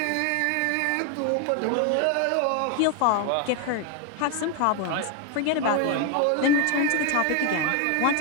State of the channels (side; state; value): both; different; correlation 0.01